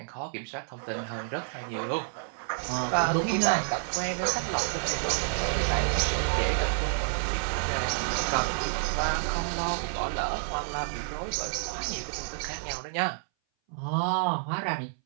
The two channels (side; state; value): left; silent; 58 dB below the other